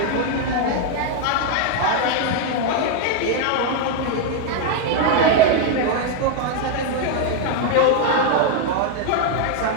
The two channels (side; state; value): both; different; correlation 0.00